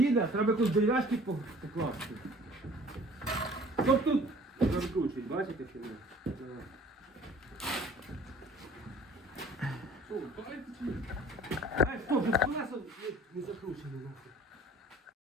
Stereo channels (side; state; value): both; normal; correlation 0.50